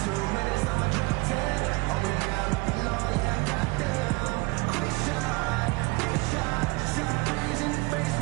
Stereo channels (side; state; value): left; quieter; 24.7 dB